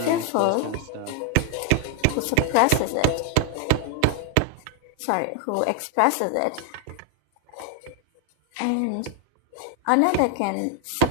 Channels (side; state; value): both; different; correlation 0.00